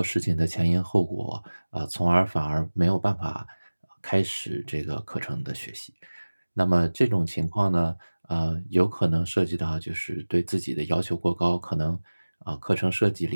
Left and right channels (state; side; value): inverted; both; correlation -1.00